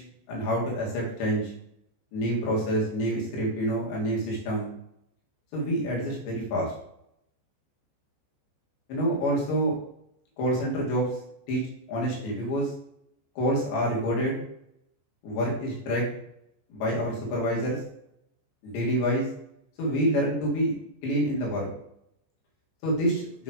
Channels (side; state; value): right; late; 14 ms